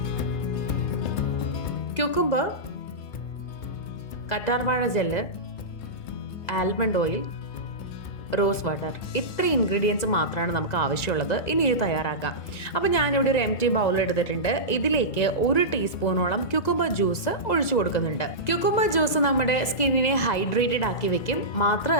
ക്യൂക്കുംബർ, കറ്റാർവാഴ gel, almond oil, rose water, ഇത്ര ഇൻഗ്രീഡിയൻസ് മാത്രമാണ് നമുക്ക് ആവശ്യമുള്ളത്. ഇനി ഇത് തയ്യാറാക്കാം. അപ്പോൾ ഞാനിവിടെ ഒരു എംറ്റി ബൗൾ എടുത്തിട്ടുണ്ട്. ഇതിലേക്ക് 1 ടീസ്പൂണോളം ക്യൂക്കുംബർ ജ്യൂസ് ഒഴിച്ചു കൊടുക്കുന്നുണ്ട്. ക്യൂക്കുംബർ ജ്യൂസ് നമ്മുടെ സ്കിന്നിനെ ഹൈഡ്രേറ്റഡ് ആക്കി വെക്കും.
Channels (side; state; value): right; late; 2.0 ms